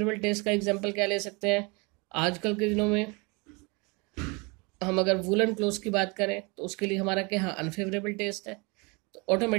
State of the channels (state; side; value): quieter; left; 29.1 dB